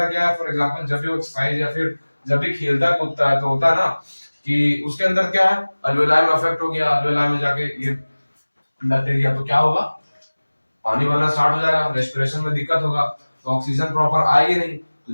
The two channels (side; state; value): both; inverted; correlation -1.00